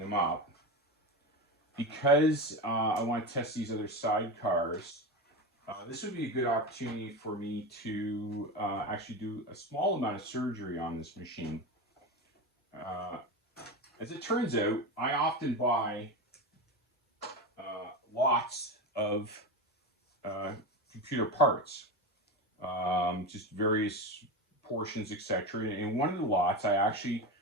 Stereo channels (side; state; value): both; normal; correlation 0.21